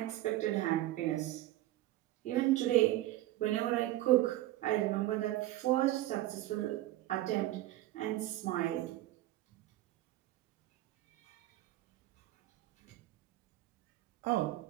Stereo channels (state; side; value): quieter; left; 15.8 dB